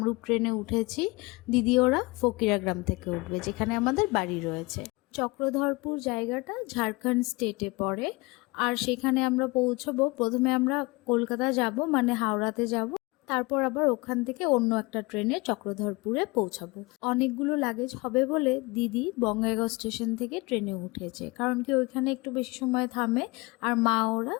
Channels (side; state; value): right; quieter; 24.7 dB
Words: ট্রেনে উঠেছি, দিদি ওরা ফকিরাগ্রাম থেকে উঠবে, যেখানে আমাদের বাড়ি রয়েছে। চক্রধরপুর জায়গাটা ঝাড়খণ্ড স্টেটে পড়ে। আর সেখানে আমরা পৌঁছবো, প্রথমে আমরা কলকাতা যাব মানে হাওড়াতে যাব, তারপর আবার ওখান থেকে অন্য একটা ট্রেনে চক্রধরপুরে পৌঁছাবো। অনেকগুলো লাগেজ হবে বলে দিদি বঙ্গাইগাঁও স্টেশন থেকে ট্রেনে উঠেছে, কারণ কি ওইখানে একটু বেশি সময় থামে। আর মা ওরা